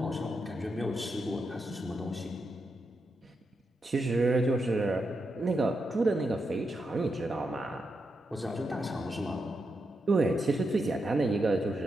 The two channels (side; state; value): both; normal; correlation 0.85